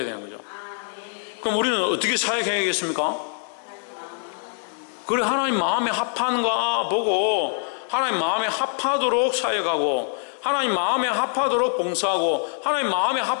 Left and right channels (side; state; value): right; silent; 59 dB below the other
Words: 되는 거죠. 그럼 우리는 어떻게 사역해야겠습니까? 그래, 하나님 마음에 합한가 보고 하나님 마음에 합하도록 사역하고, 하나님 마음에 합하도록 봉사하고, 하나님 마음에